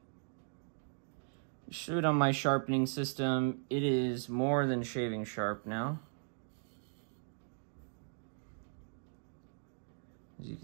Shoot on my sharpening system. It is more than shaving sharp now, as you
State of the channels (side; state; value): left; silent; digital silence